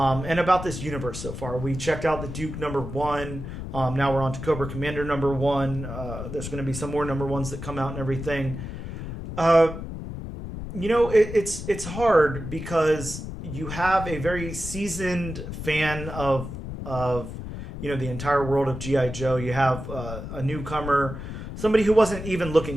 about this universe so far. We checked out the Duke number 1. Now we're on to Cobra Commander number 1. There's going to be some more number 1s that come out and everything. It's hard because you have a very seasoned fan of the entire world of G.I. Joe. You have a newcomer, somebody who wasn't even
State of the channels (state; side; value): noise; left; rumble, 8 dB below the sound